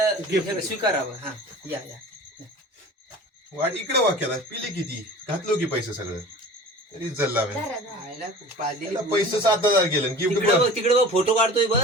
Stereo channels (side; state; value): both; normal; correlation 0.40